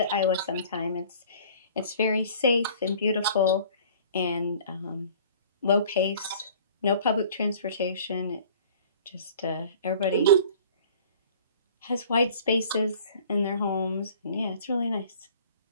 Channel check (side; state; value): both; inverted; correlation -0.49